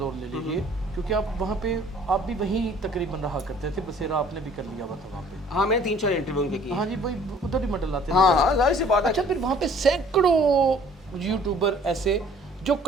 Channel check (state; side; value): normal; both; correlation 0.54